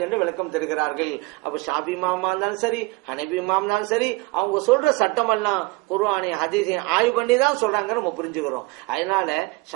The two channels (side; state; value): left; quieter; 23.3 dB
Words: என்று விளக்கம் தருகிறார்கள். அப்ப ஷாபி இமாமா இருந்தாலும் சரி, ஹனபி இமாம் தான் சரி, அவங்க சொல்ற சட்டமெல்லாம் குர்ஆனை ஹதீஸை ஆய்வு பண்ணி தான் சொல்றாங்க நம்ம புரிஞ்சுக்கிறோம். அதனால